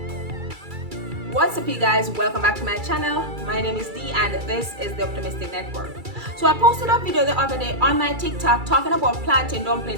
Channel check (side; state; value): left; late; 2.3 ms